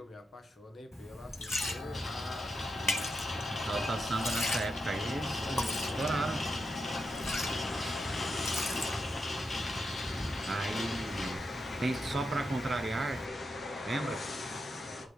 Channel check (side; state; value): both; normal; correlation 0.85